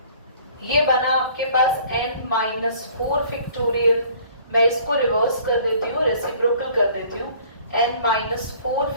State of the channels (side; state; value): both; inverted; correlation -0.53